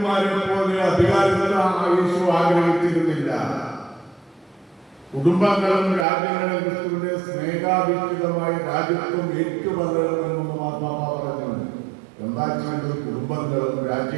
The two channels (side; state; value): left; drops out; at 6.1 s